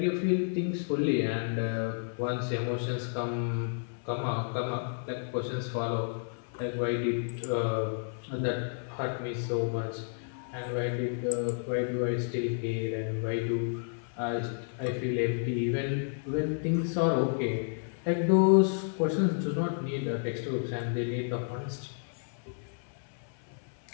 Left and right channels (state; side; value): silent; right; 57 dB below the other